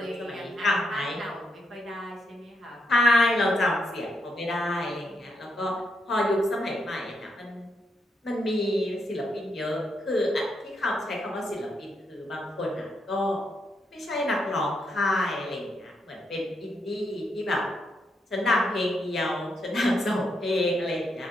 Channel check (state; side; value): normal; both; correlation 0.80